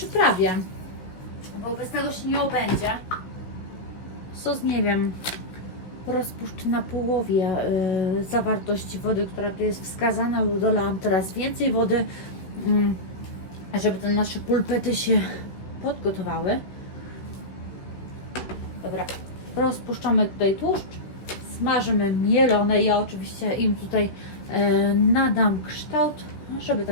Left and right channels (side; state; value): right; late; 15 ms